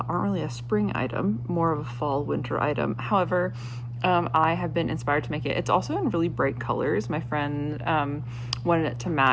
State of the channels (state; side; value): identical; both; correlation 1.00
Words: really a spring item, more of a fall winter item. However, I have been inspired to make it. It's also in really bright colors. My friend wanted it to